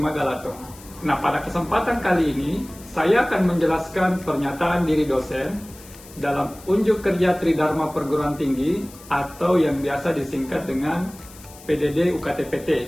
Nah, pada kesempatan kali ini, saya akan menjelaskan pernyataan diri dosen dalam unjuk kerja Tridharma Perguruan Tinggi atau yang biasa disingkat dengan PDD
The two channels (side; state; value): left; noise; hiss, 20 dB below the sound